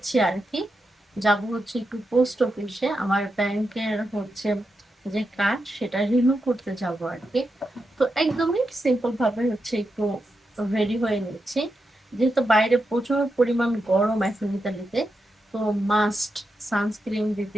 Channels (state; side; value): normal; both; correlation 0.87